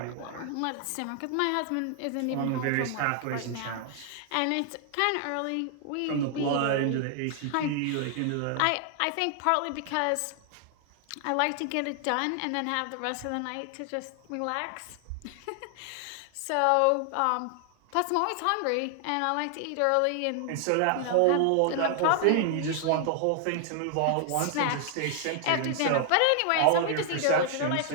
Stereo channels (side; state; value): both; different; correlation 0.00